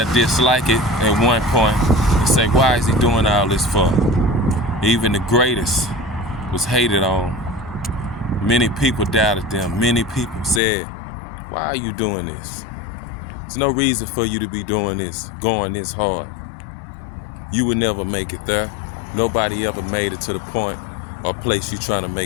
dislike it at one point and say, why is he doing all this for? Even the greatest was hated on. Many people doubted them. Many people said, why are you doing this? There's no reason for you to be doing this, going this hard. You would never make it there. Nobody ever made it to the point or place you're trying to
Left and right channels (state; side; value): drops out; right; at 10.6 s